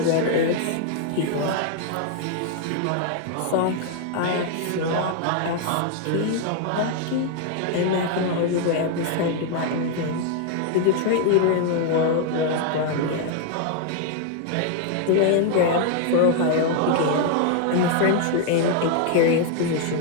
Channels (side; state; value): both; different; correlation 0.00